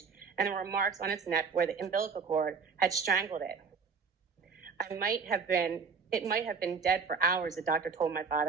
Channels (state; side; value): quieter; left; 5.3 dB